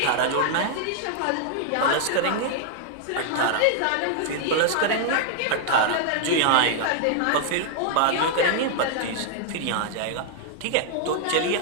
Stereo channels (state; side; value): different; both; correlation -0.01